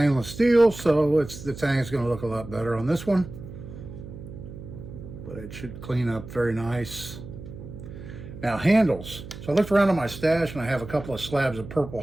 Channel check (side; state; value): right; noise; hum, 13 dB below the sound